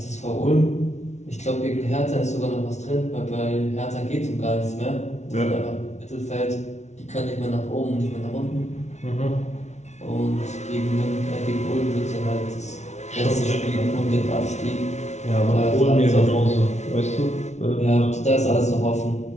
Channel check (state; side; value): late; right; 0.32 ms